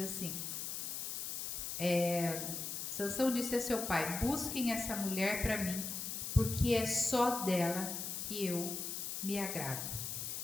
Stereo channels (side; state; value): left; noise; hiss, 4 dB below the sound